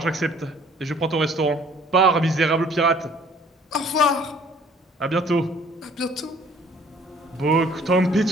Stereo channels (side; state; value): both; normal; correlation 0.56